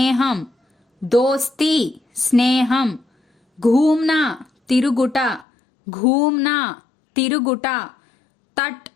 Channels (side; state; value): right; drops out; at 5.5 s